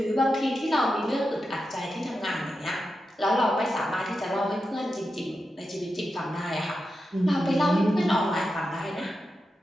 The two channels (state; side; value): normal; both; correlation 0.89